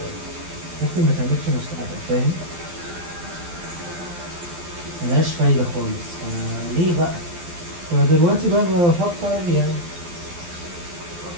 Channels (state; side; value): late; left; 12 ms